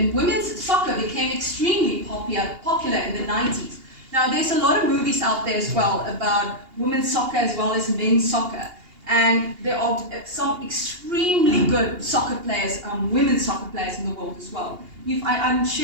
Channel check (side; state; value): left; late; 2.8 ms